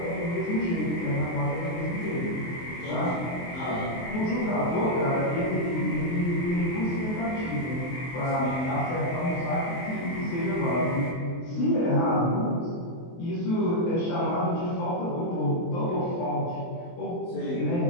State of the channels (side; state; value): right; late; 23 ms